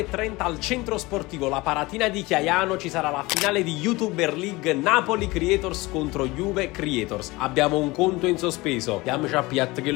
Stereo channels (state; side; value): quieter; right; 21.8 dB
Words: al centro sportivo La Paratina di Chiaiano ci sarà la finale di YouTuber League Napoli Creators contro Juve Creators. Abbiamo un conto in sospeso. Diamoci a piatta